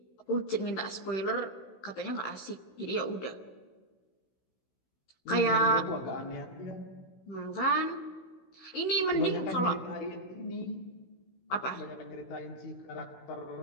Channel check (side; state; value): right; late; 16 ms